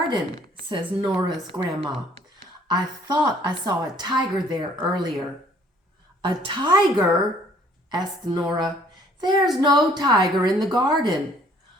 Says Nora's grandma. I thought I saw a tiger there earlier. A tiger? Asked Nora. There's no tiger in the garden.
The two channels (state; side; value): normal; both; correlation 0.59